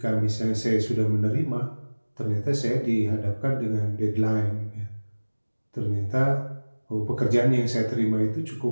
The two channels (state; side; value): inverted; both; correlation -1.00